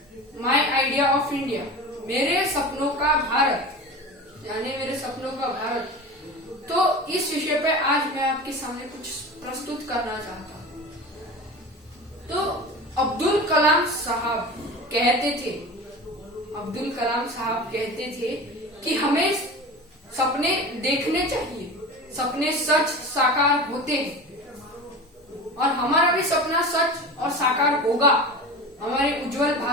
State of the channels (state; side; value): normal; both; correlation 0.31